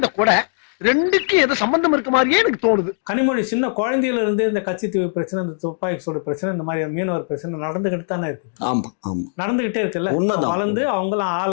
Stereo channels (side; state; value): right; silent; digital silence